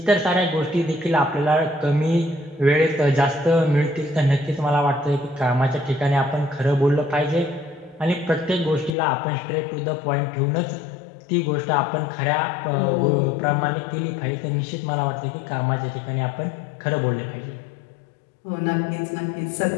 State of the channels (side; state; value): right; drops out; at 9.0 s